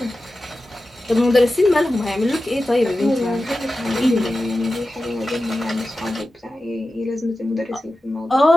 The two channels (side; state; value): both; normal; correlation 0.94